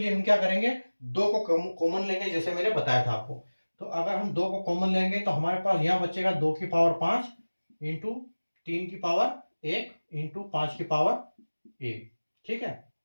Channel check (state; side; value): inverted; both; correlation -1.00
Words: हम क्या करेंगे, 2 को कॉमन लेंगे, जैसे मैंने बताया था आपको। तो अगर हम 2 को कॉमन लेंगे तो हमारे पास यहाँ बचेगा 2 की पावर 5 इंटू 3 की पावर 1 इंटू 5 की पावर 1, ठीक है।